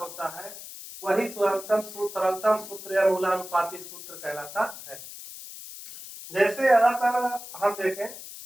वही सरलतम सूत्र या मूलानुपाती सूत्र कहलाता है। जैसे यहाँ पर हम देखें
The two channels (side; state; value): left; noise; hiss, 13 dB below the sound